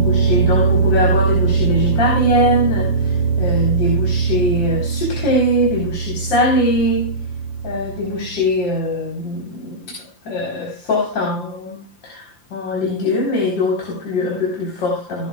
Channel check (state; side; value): late; right; 5.8 ms